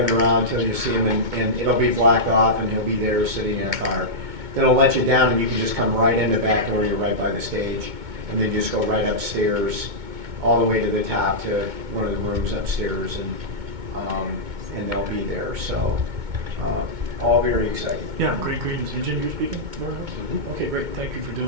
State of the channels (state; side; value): late; left; 2.2 ms